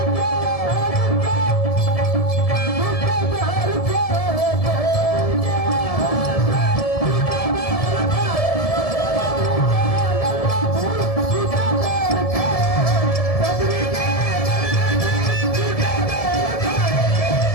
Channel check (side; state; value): right; late; 1.7 ms